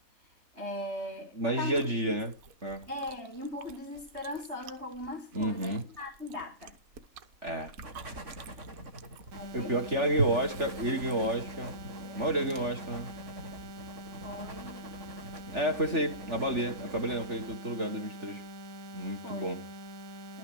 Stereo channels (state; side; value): late; left; 3.4 ms